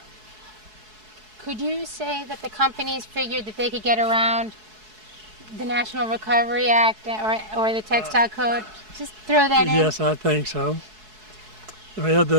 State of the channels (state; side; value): late; left; 4.7 ms